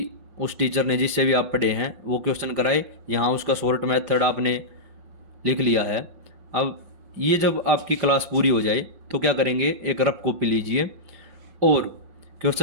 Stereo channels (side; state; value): left; late; 5.5 ms